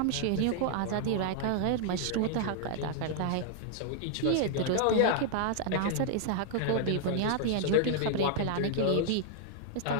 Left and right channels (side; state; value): both; different; correlation 0.00